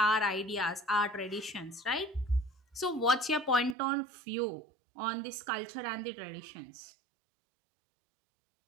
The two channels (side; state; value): left; drops out; at 3.8 s